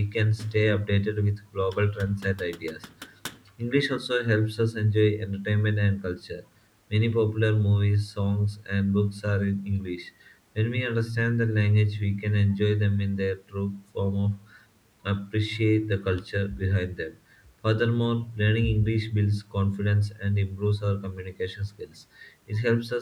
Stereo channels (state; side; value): identical; both; correlation 1.00